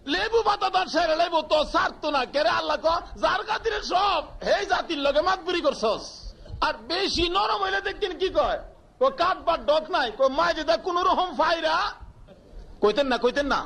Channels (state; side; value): identical; both; correlation 1.00